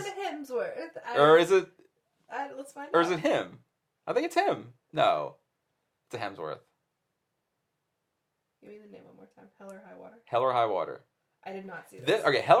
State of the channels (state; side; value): identical; both; correlation 1.00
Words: Or is it? Let's find out. Or is it him? I think it's him. No, it's a Hemsworth. Give me the name one more time. Hell or High Water. Hell or High Water. I did not see this. Okay, Hell